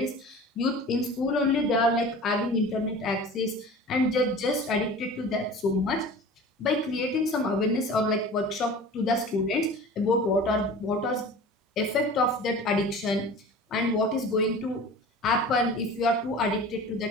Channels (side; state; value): both; normal; correlation 0.39